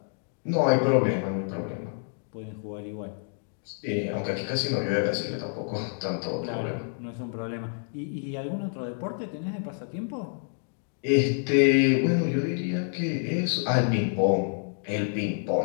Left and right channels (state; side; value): silent; right; 59 dB below the other